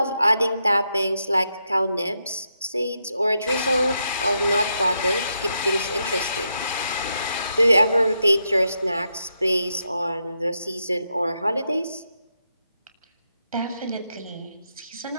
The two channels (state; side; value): inverted; both; correlation -0.82